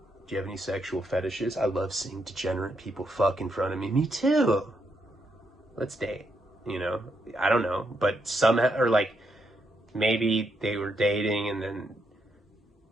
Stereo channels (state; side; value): normal; both; correlation 0.79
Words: Do you have any sexual fetishes? I love seeing degenerate people fuck in front of me. Me too. Let's date. You know? I don't know. But somehow, or like, maybe they were dating and then